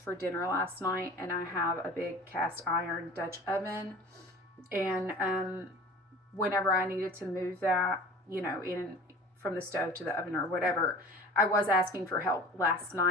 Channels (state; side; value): normal; both; correlation 0.41